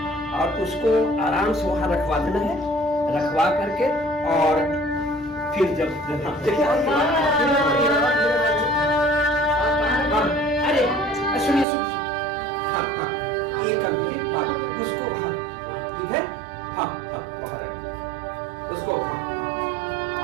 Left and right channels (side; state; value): left; drops out; at 11.7 s